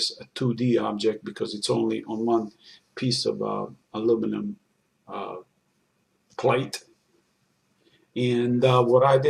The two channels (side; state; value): both; identical; correlation 1.00